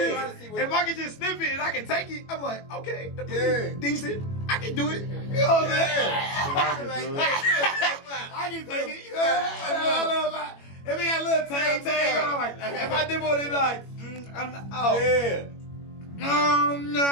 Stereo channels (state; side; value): late; right; 21 ms